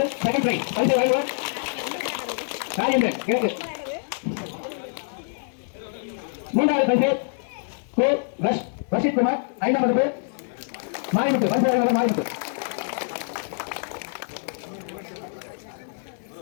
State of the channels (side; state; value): right; silent; digital silence